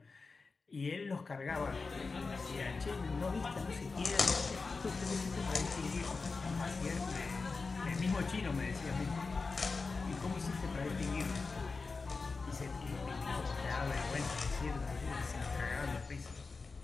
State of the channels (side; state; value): right; quieter; 4.2 dB